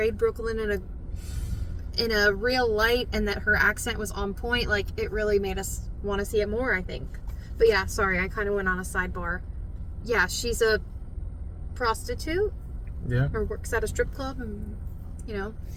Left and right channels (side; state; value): both; identical; correlation 1.00